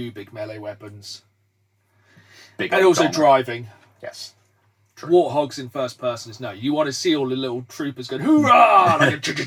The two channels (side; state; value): both; identical; correlation 1.00